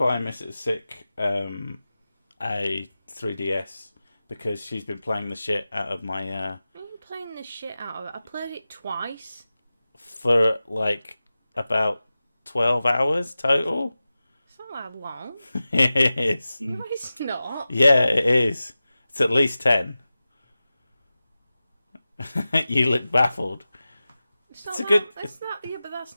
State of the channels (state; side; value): inverted; both; correlation -0.95